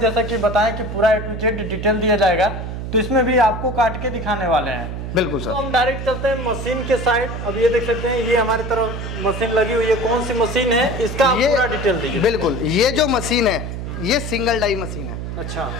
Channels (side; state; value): right; noise; hum, 6 dB below the sound